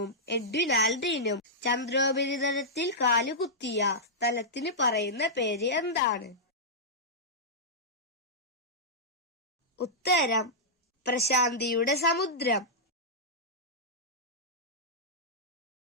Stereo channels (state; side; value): normal; both; correlation -0.11